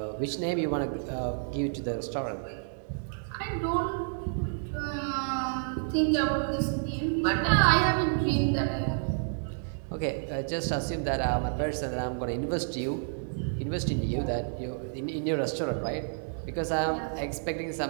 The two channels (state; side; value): silent; left; digital silence